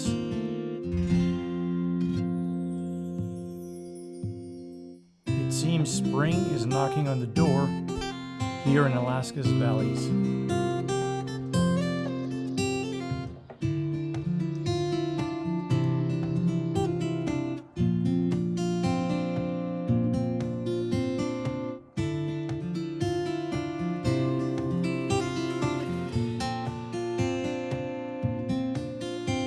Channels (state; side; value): identical; both; correlation 1.00